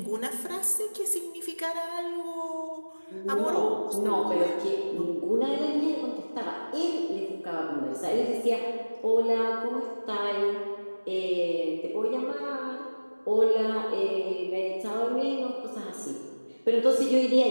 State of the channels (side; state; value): both; inverted; correlation -1.00